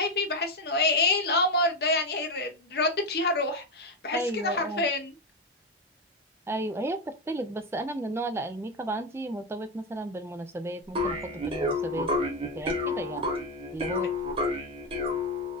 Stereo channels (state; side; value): normal; both; correlation 0.11